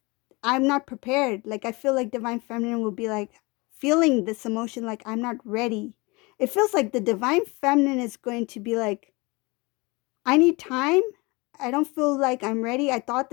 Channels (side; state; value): right; quieter; 25.6 dB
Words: I'm not prepared. Like, I feel like Divine Feminine will be like feeling this emotion like, I'm not ready. It feels like the Divine Feminine is going to be like, I need time. I don't feel like I'm ready. I thought